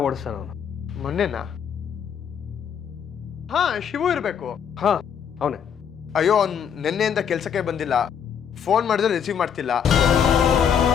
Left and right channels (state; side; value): quieter; right; 7.8 dB